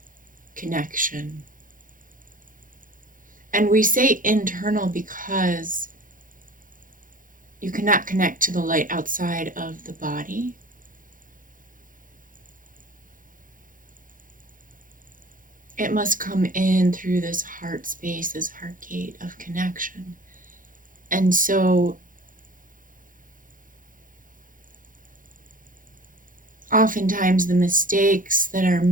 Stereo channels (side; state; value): left; late; 0.39 ms